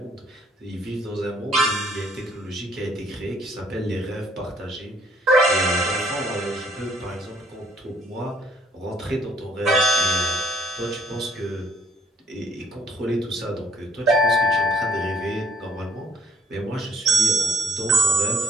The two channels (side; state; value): both; normal; correlation 0.63